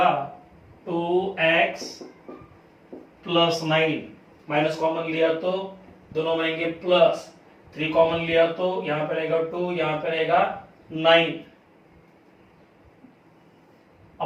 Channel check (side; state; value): both; identical; correlation 1.00